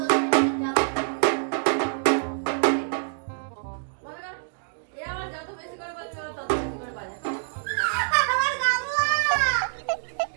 যাবো। মনে করো, এ আমার যত বেশি করে বলবে ও তত বেশি করে বাজায়। আমার গামলা।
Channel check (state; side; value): silent; left; digital silence